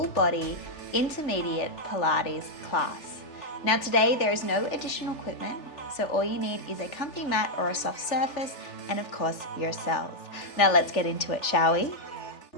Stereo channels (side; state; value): right; late; 3.4 ms